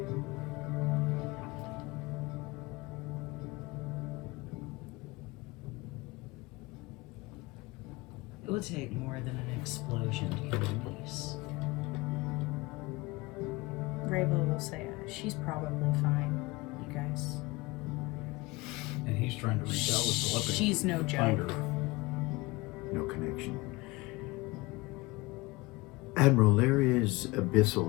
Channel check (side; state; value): right; quieter; 22.7 dB